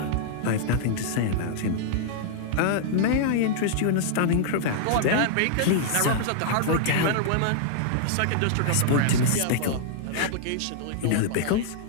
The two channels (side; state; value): both; different; correlation -0.01